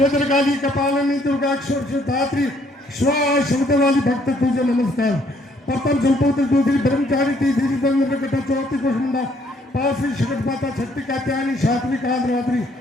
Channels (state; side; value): normal; both; correlation 0.66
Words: गाली, कपालिनी, दुर्गा, धात्री, स्वा शब्द वाली भक्त तुझे नमस्कार। प्रथम जलपुत्र, दूसरी ब्रह्मचारी, तीसरी चौथी कुष्मंडा, पांचवी शकट माता, छठी कात्यायनी, सातवीं कांद्रवात्री,